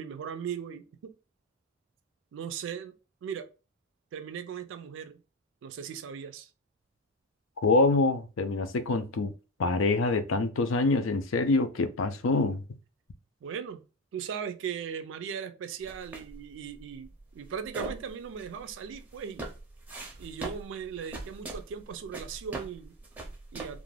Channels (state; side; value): normal; both; correlation 0.09